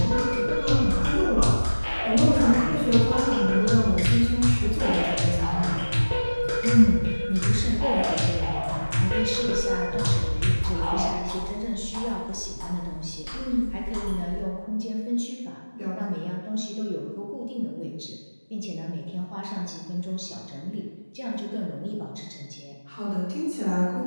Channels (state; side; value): inverted; both; correlation -1.00